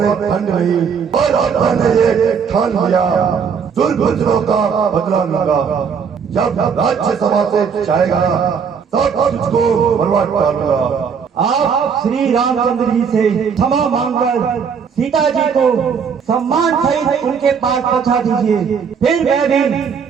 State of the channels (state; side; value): quieter; left; 6.5 dB